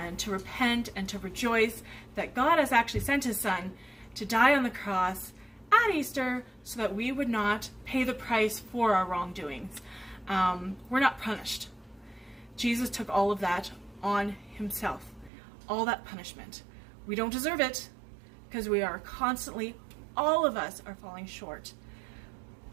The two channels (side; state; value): left; drops out; at 15.3 s